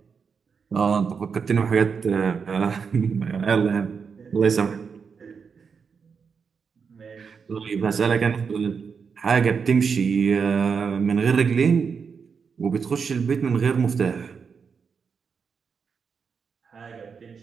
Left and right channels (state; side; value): quieter; left; 5.9 dB